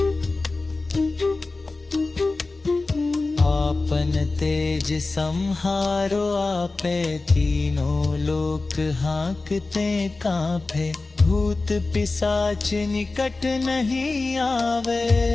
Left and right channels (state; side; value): quieter; right; 3.5 dB